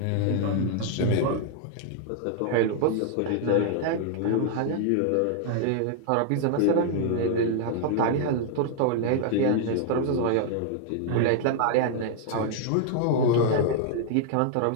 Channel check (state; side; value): different; both; correlation 0.00